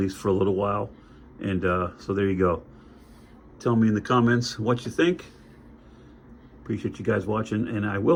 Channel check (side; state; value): both; identical; correlation 1.00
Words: for a little while. And so there you go. Tell me in the comments what you think. Appreciate you guys watching, and I